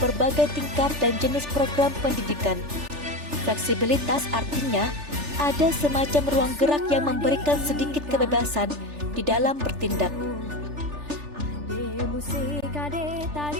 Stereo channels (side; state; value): left; late; 3.4 ms